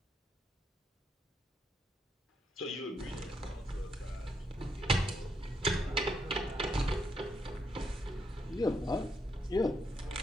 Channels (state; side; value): normal; both; correlation 0.78